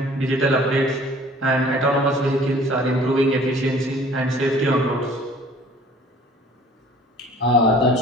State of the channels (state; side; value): normal; both; correlation 0.51